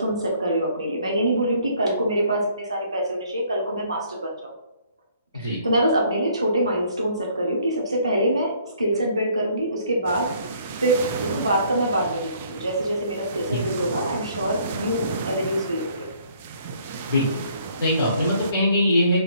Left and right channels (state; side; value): inverted; both; correlation -0.62